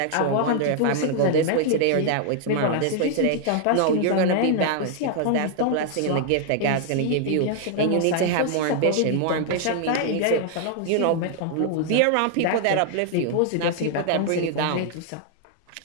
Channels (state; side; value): different; both; correlation 0.00